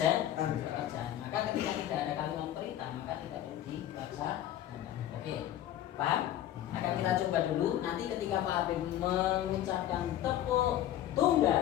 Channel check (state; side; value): quieter; right; 12.2 dB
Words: Maka ketika tidak ada kalimat perintah maka tidak perlu dilaksanakan. Oke, paham? Akan kita coba dulu. Nanti ketika Pak Habib mengucapkan tepuk